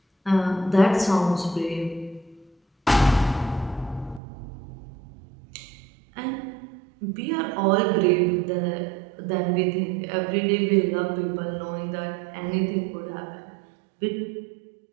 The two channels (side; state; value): left; drops out; at 4.2 s